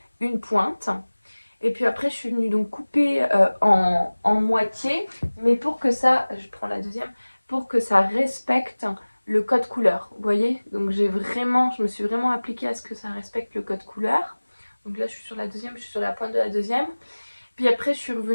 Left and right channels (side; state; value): both; inverted; correlation -1.00